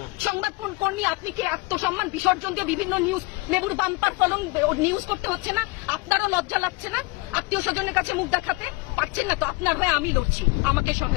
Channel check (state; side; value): quieter; right; 25.0 dB